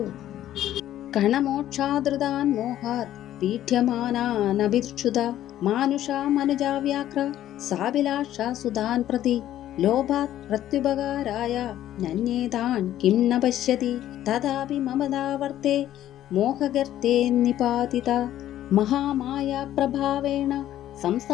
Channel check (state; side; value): quieter; right; 12.5 dB